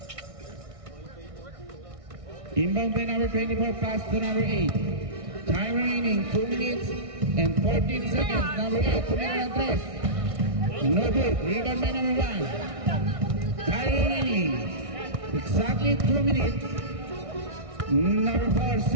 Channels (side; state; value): left; late; 1.6 ms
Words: Inbound by number 24, pass to number 8. Time remaining 2 minutes and 14 seconds. Number 8, Tumira Andres. No good. Rebound by number 1. Time remaining exactly 2 minutes. Number 4,